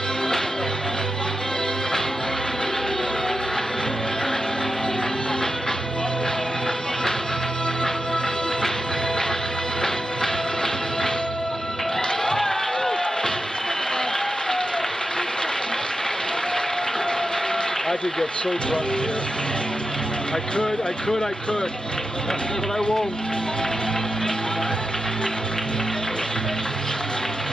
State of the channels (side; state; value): both; normal; correlation 0.89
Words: I could get so drunk here. I could, but I won't.